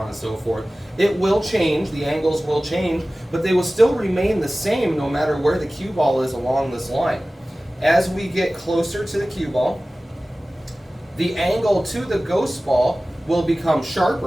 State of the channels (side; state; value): both; normal; correlation 0.97